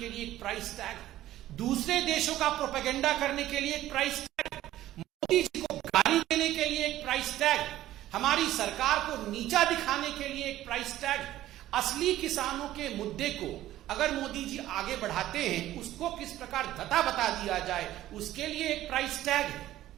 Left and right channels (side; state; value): left; quieter; 14.2 dB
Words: लिए एक प्राइस टैग है, दूसरे देशों का प्रोपेगेंडा करने के लिए एक प्राइस टैग है, मोदी जी को गाली देने के लिए एक प्राइस टैग है, हमारी सरकार को नीचा दिखाने के लिए एक प्राइस टैग है। असली किसानों के मुद्दे को अगर मोदी जी आगे बढ़ाते हैं, उसको किस प्रकार धता बता दिया जाए, उसके लिए एक प्राइस टैग है।